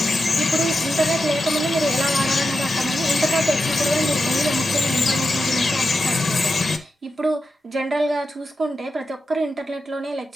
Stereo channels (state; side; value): normal; both; correlation 0.89